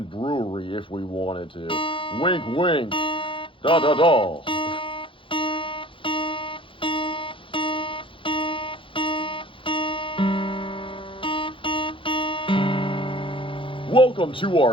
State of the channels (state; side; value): late; right; 0.25 ms